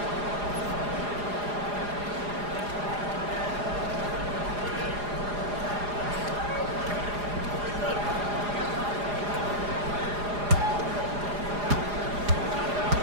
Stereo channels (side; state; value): left; late; 4.9 ms